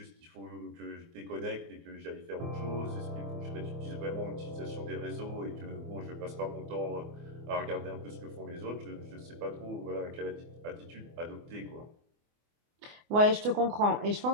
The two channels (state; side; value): late; left; 24 ms